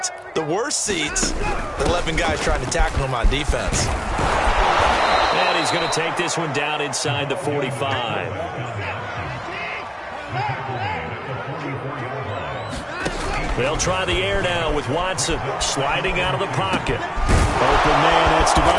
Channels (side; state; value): both; identical; correlation 1.00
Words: The worst seats, the 11 guys trying to tackle him on defense. And he's going to take this one down inside the 45. They'll try the air now with Watson sliding out of the pocket. Open man, that's